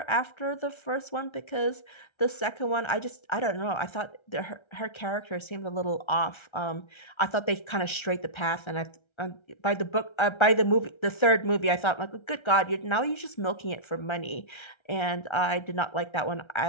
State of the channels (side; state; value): right; late; 1.3 ms